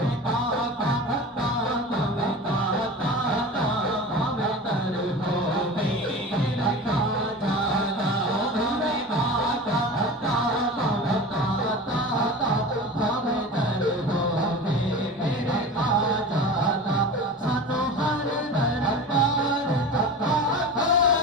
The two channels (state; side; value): normal; both; correlation 0.33